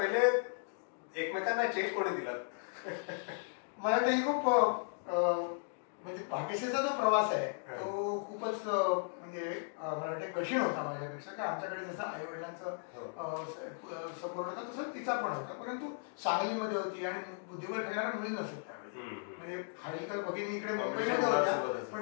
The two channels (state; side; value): silent; right; digital silence